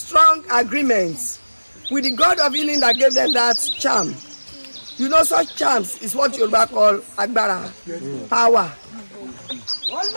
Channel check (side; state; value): both; inverted; correlation -1.00